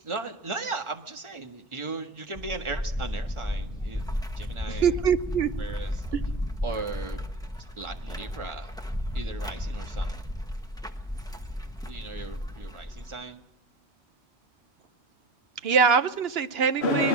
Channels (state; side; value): quieter; left; 3.4 dB